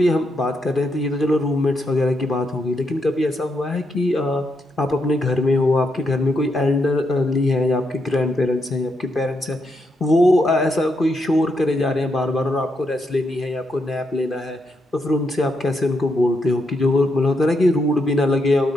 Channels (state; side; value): normal; both; correlation 0.80